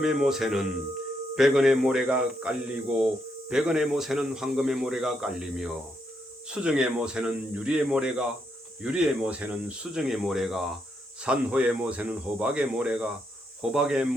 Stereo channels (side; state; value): both; normal; correlation 0.78